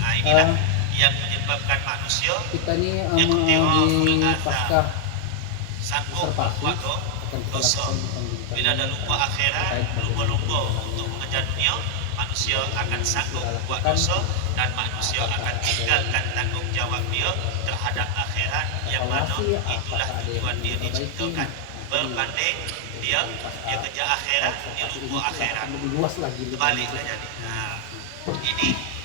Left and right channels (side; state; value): both; different; correlation 0.00